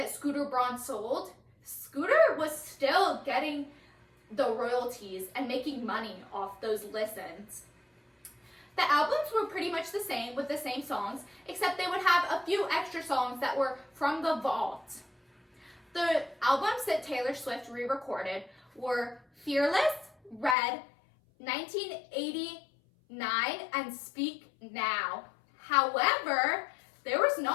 Scooter Braun sold, Scooter was still getting the royalties and making money off those listens. The albums were pretty much the same with the same songs, except they would have a few extra songs that were from the vault. The albums that Taylor Swift re-recorded were Fearless, Red, 1989, and Speak Now. However, there was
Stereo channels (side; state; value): right; drops out; at 20.6 s